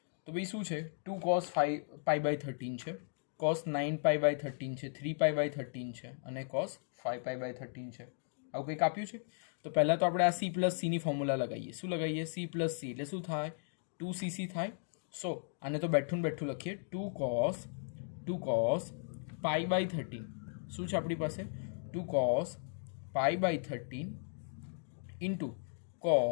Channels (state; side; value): silent; right; digital silence